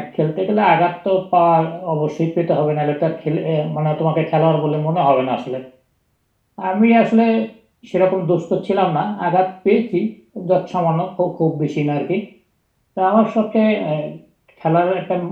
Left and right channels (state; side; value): identical; both; correlation 1.00